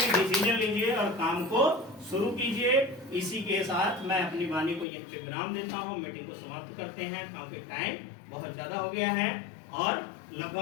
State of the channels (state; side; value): drops out; right; at 4.9 s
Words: लीजिए और काम को शुरू कीजिए। इसी के साथ मैं अपनी वाणी को यहीं पे विराम देता हूँ, मीटिंग को समाप्त करते हैं क्योंकि टाइम बहुत ज्यादा हो गया है और